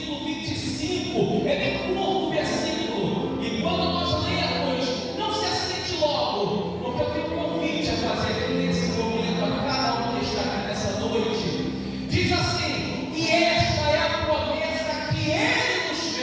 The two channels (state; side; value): identical; both; correlation 1.00